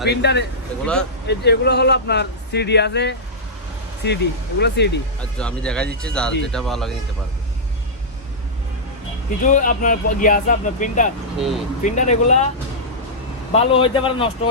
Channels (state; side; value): normal; both; correlation -0.13